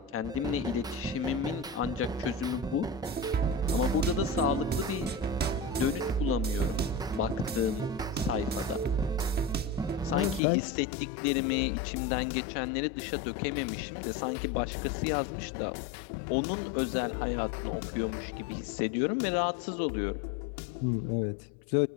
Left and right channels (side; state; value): right; drops out; at 10.4 s